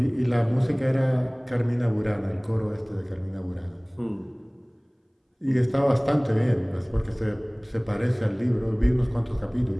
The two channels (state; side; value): identical; both; correlation 1.00